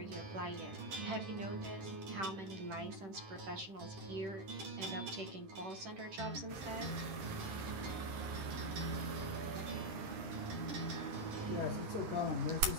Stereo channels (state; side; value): late; left; 10 ms